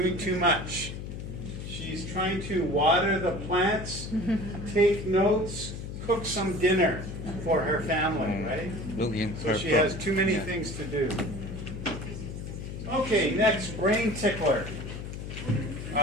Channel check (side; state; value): left; noise; hum, 8 dB below the sound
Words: too much. She's trying to water the plants, take notes, cook some dinner for her family, right? Looking for So she has too many things to do. Okay, next, brain tickler.